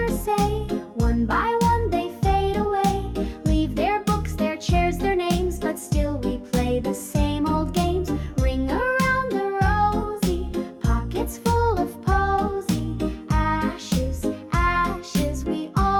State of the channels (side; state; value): both; identical; correlation 1.00